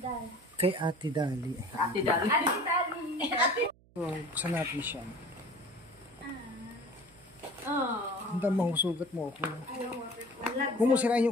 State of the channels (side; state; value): right; noise; hum, 29 dB below the sound